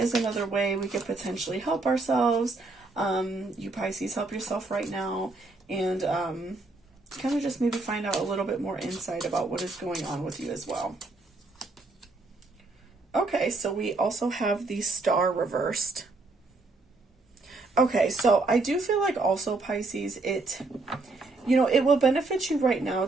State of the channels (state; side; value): quieter; left; 3.4 dB